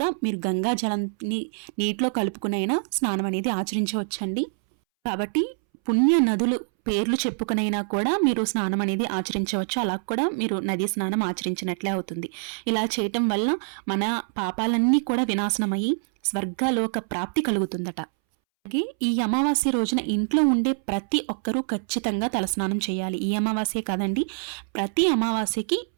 మీరు గంగా జలాన్ని నీటిలో కలుపుకునైనా స్నానం అనేది ఆచరించవచ్చండి. కాబట్టి పుణ్య నదులు పేర్లు చెప్పుకునైనా కూడా మీరు స్నానం అనేది ఆచరించవచ్చు. అలా కూడా మీరు నదీ స్నానం ఆచరించినట్లే అవుతుంది. ఇలా చేయటం వల్ల మన పాపాలన్నీ కూడా వినాశనమయ్యి స్వర్గలోక ప్రాప్తి కలుగుతుందట. అలాగే ఈ అమావాస్య రోజున ఇంట్లో ఉండే ప్రతి ఒక్కరూ ఖచ్చితంగా తలస్నానం చేయాలి. ఈ అమావాస్య కాదండి, ప్రతి అమావాస్యకి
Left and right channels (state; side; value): silent; left; 62 dB below the other